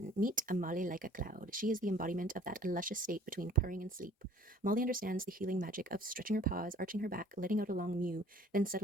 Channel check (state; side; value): normal; both; correlation 0.52